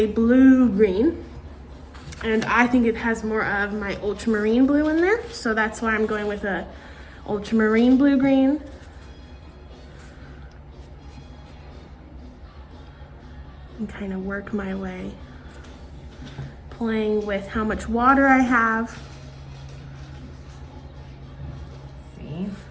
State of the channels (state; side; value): identical; both; correlation 1.00